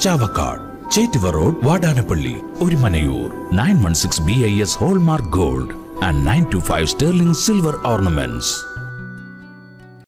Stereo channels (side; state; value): both; identical; correlation 1.00